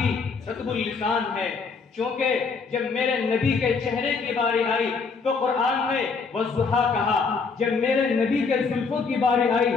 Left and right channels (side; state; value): right; quieter; 4.9 dB